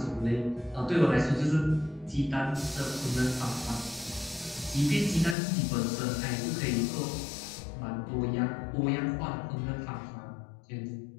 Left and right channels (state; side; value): drops out; right; at 5.4 s